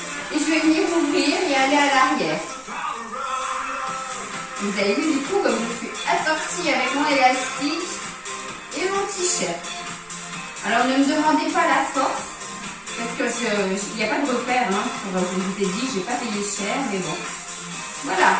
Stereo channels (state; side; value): identical; both; correlation 1.00